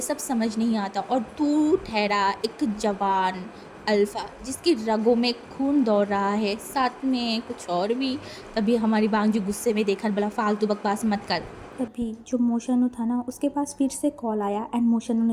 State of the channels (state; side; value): identical; both; correlation 1.00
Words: सब समझ नहीं आता और तू ठहरा एक जवान अल्फा जिसकी रगों में खून दौड़ रहा है, साथ में कुछ और भी। तभी हमारी बांग जी गुस्से में देखा बोला फालतू बकवास मत कर। तभी जो मोशनु था ना उसके पास फिर से कॉल आया एंड मोशनु